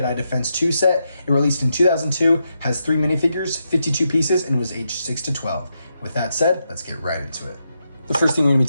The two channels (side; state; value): both; inverted; correlation -0.84